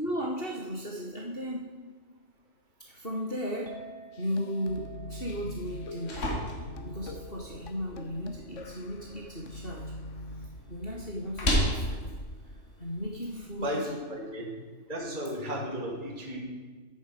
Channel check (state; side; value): late; right; 2.7 ms